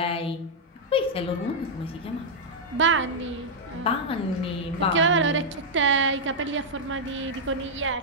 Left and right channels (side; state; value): both; normal; correlation -0.05